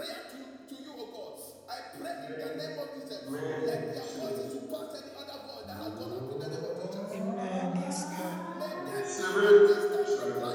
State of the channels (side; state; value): both; identical; correlation 1.00